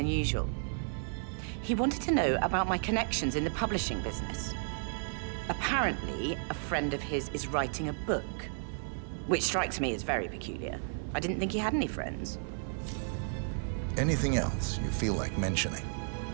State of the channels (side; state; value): left; silent; 56 dB below the other